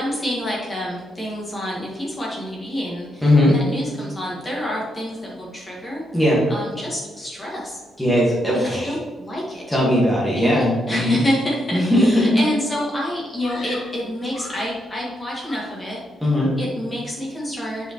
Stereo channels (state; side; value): normal; both; correlation 0.80